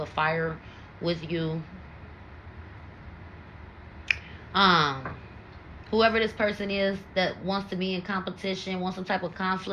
of fire with you. um Whoever this person is that wants to be in competition, wants some type of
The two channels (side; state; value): both; identical; correlation 1.00